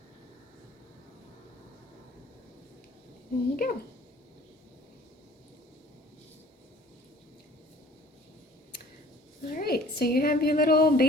There you go. All right, so you have your little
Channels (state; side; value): normal; both; correlation 0.51